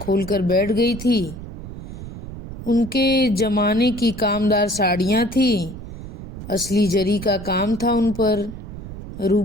बैठ गई थी। उनके जमाने की कामदार साड़ियाँ थी, असली जरी का काम था उन पर।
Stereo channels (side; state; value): right; noise; rumble, 11 dB below the sound